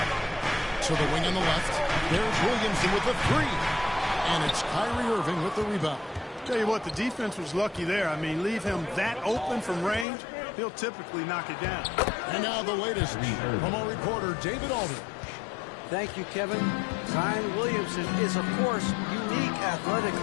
To the wing on the left. There's Williamson with the three. And it's Kyrie Irving with the rebound. Tell you what, the defense was lucky there. I mean, leave him that open from range, he'll typically knock it down. And now the latest from our reporter, David Aldridge. Thank you, Kevin. Zion Williamson is, of course, unique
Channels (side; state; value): right; drops out; at 10.1 s